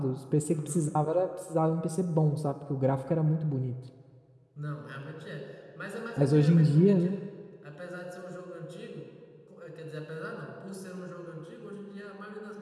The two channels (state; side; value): identical; both; correlation 1.00